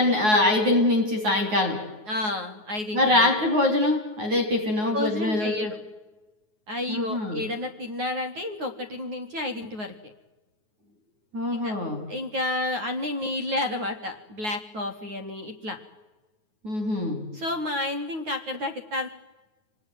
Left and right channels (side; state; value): left; late; 9.4 ms